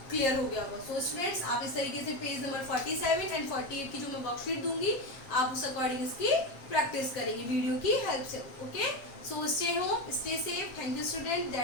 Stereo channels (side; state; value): right; late; 7.5 ms